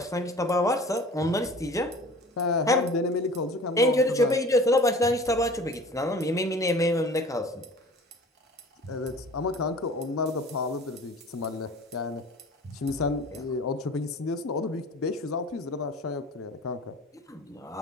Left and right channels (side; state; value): both; normal; correlation 0.43